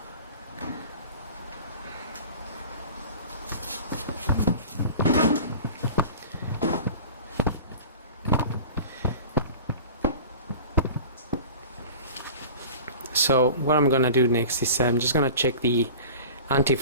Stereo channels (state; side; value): inverted; both; correlation -0.38